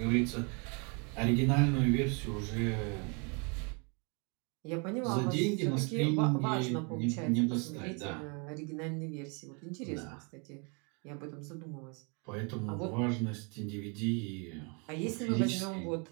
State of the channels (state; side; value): quieter; left; 34.5 dB